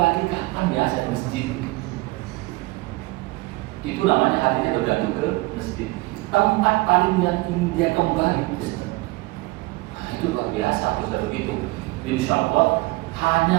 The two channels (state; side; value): quieter; left; 21.9 dB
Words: kapan ya saya ke masjid. Itu namanya hatinya bergantung ke masjid. Tempat paling yang ingin dia kembali masjid. Nah, itu luar biasa kalau begitu. Insya Allah